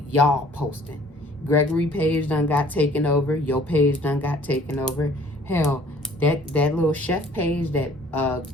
y'all posting. Gregory page done got taken over. Your page done got taken over. Hell, that little chef page that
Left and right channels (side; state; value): both; normal; correlation 0.55